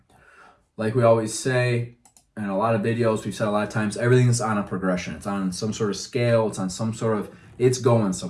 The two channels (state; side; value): identical; both; correlation 1.00